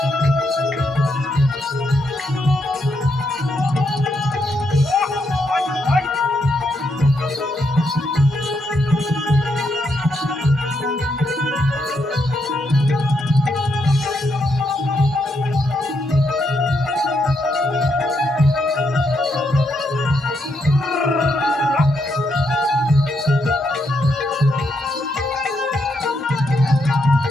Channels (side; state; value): both; normal; correlation 0.79